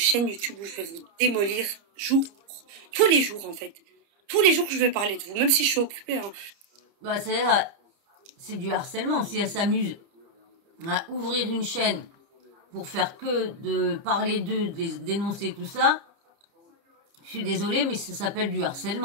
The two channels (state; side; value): late; left; 30 ms